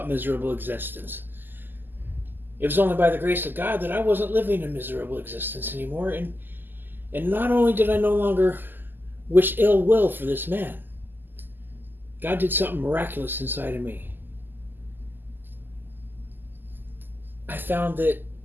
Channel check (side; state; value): left; late; 0.091 ms